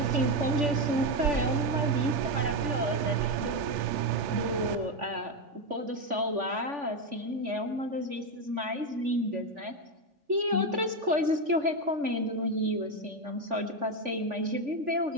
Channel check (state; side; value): late; left; 3.4 ms